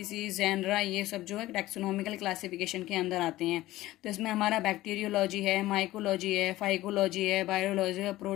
जेनरा, ये सब जो है टैक्सोनॉमिकल क्लासिफिकेशन के अंदर आते हैं। तो इसमें हमारा बैक्टीरियोलॉजी है, माइकोलॉजी है, फाइकोलॉजी है, बायोलॉजी है,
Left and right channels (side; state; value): right; quieter; 16.5 dB